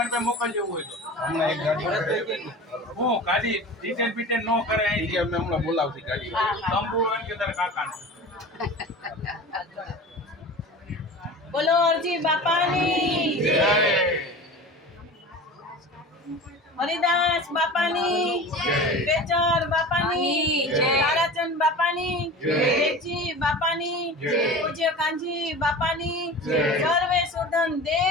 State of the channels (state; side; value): normal; both; correlation 0.35